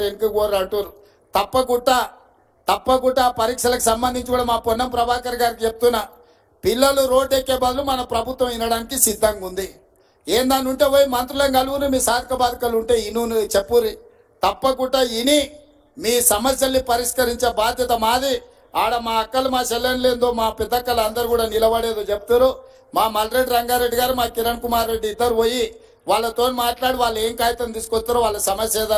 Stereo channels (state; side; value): identical; both; correlation 1.00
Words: వెనుక కోరు అంటారు. తప్పకుండా పరీక్షలకు సంబంధించి కూడా మా పొన్నం ప్రభాకర్ గారికి చెప్తున్నా, పిల్లలు రోడ్డు ఎక్కే బదులు మన ప్రభుత్వం వినడానికి సిద్ధంగా ఉంది. ఏందని ఉంటే పోయి మంత్రులను కలువుని, మీ సాధక బాధకాలు ఉంటే ఇను చెప్పురి. తప్పకుండా ఇని మీ సమస్యల్ని పరిష్కరించే బాధ్యత మాది. ఆడ మా అక్కలు, మా చెల్లెళ్ళేందో, మా పెద్దక్కలు అందరూ కూడా నిలబడేదో చెప్తారు. మా మల్రెడ్డి రంగారెడ్డి గారు, మా కిరణ్ కుమార్ రెడ్డి ఇద్దరు పోయి వాళ్ళతో మాట్లాడి వాళ్ళు ఏం కాగితం తీసుకొస్తారో, వాళ్ళ సమస్య